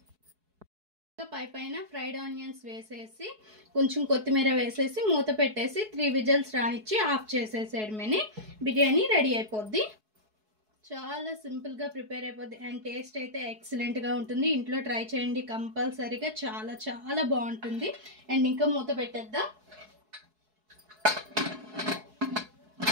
పైన ఫ్రైడ్ ఆనియన్స్ వేసేసి కొంచెం కొత్తిమీర వేసేసి మూత పెట్టేసి 3 విజిల్స్ రానిచ్చి ఆఫ్ చేసేసేయడమేని బిర్యానీ రెడీ అయిపోద్ది. చాలా సింపుల్గా ప్రిపేర్ అయిపోద్ది అండ్ టేస్ట్ అయితే ఎక్సలెంట్గా ఉంటుంది. ఇంట్లో ట్రై చేయండి కంపల్సరీగా, చాలా చాలా బాగుంటుంది. అండ్ ఇంకా మూత పెట్టేద్దాం.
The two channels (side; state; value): left; late; 4.7 ms